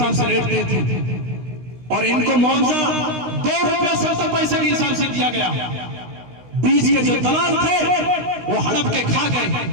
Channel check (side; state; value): left; late; 16 ms